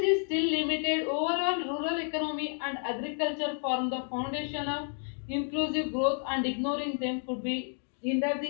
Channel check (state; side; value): silent; right; 57 dB below the other